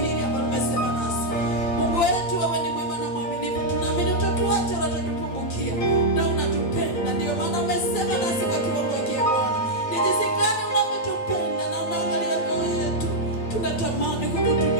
hili ambalo umesema nasi. Mungu wetu, wewe ni mwema na mwaminifu, tunaamini utatuacha wala utatupungukia, na unatupenda. Ndio maana umesema nasi kwa kiwango hiki Bwana, ni jinsi gani unavyotupenda na unaangalia mioyo yetu. Tunatamani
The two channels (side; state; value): right; late; 8.8 ms